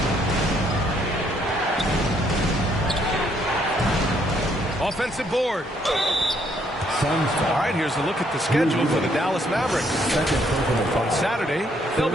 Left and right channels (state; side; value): normal; both; correlation 0.69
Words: Offensive board. All right, here's a look at the schedule for the Dallas Mavericks. On Saturday, they'll